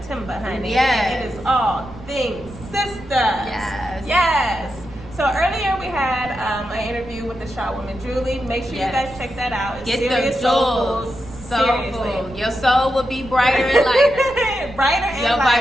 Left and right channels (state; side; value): noise; right; rumble, 17 dB below the sound